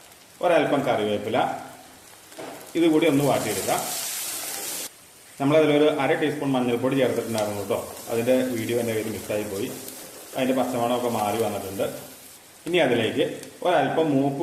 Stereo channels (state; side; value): identical; both; correlation 1.00